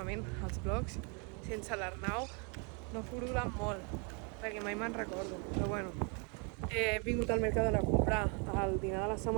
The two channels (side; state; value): left; quieter; 35.4 dB